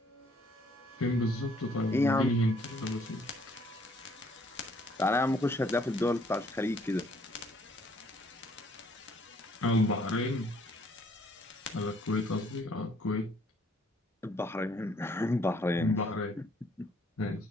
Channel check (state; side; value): normal; both; correlation 0.63